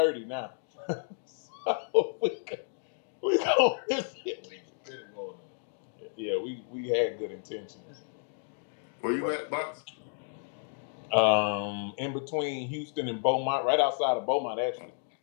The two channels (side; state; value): right; silent; 57 dB below the other